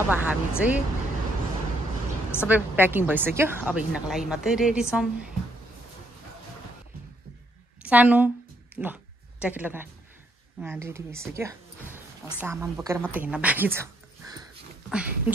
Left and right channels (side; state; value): both; normal; correlation 0.72